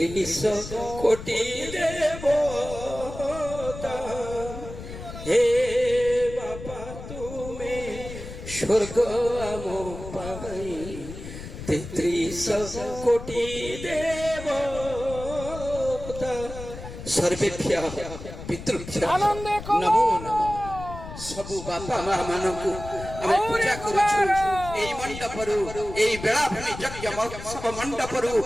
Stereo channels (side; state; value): left; noise; rumble, 11 dB below the sound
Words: কোটি দেবতা হে বাপা তুমি স্বর্গ আম পাই 33 কোটি দেবতা সর্বেভ্য পিতৃভ্য নমো নমঃ सबु बापा माँ मानकु आमे पूजा करूछु एई मंडपरु एई बेलाभूमि यज्ञ महोत्सव मंडपरु